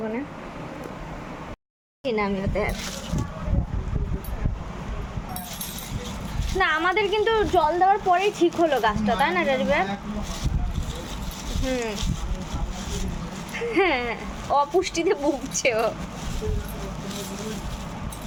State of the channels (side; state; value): both; identical; correlation 1.00